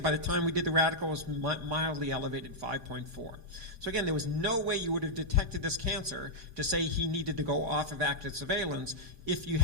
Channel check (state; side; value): late; left; 5.6 ms